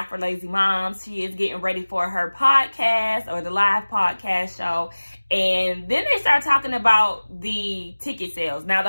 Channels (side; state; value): both; inverted; correlation -1.00